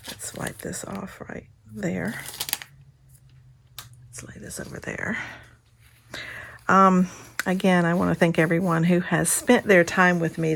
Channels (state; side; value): identical; both; correlation 1.00